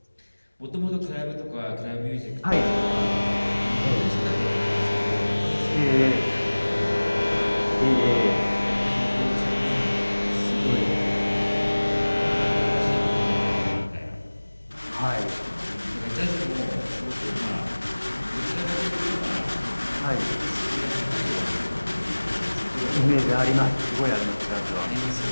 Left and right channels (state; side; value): inverted; both; correlation -1.00